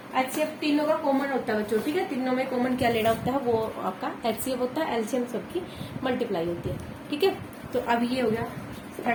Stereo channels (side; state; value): both; identical; correlation 1.00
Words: HCF तीनों का कॉमन होता है बच्चों। ठीक है, तीनों में कॉमन क्या लेना होता है, वो आपका HCF होता है, LCM सबकी मल्टीप्लाई होती है। ठीक है, तो अब ये हो गया